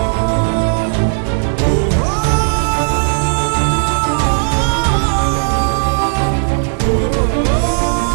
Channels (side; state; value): left; silent; digital silence